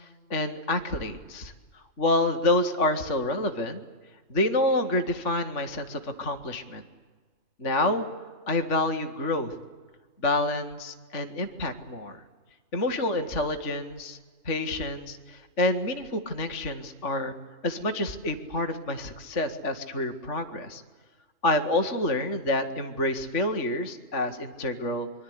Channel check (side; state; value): right; late; 3.4 ms